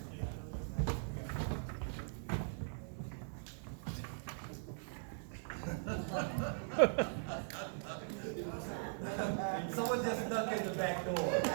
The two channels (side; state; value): left; silent; 51 dB below the other